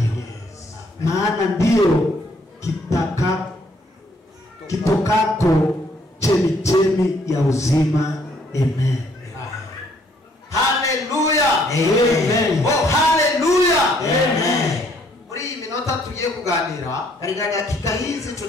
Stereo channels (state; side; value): normal; both; correlation 0.65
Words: Maana ndio kitokako chemichemi ya uzima. Amen. Hallelujah. Amen. Oh, hallelujah. Amen. Muri minota tugiye kuganira, katika dakika hizi